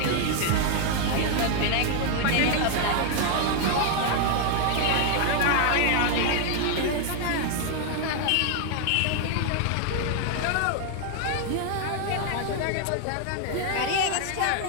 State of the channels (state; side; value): different; both; correlation 0.00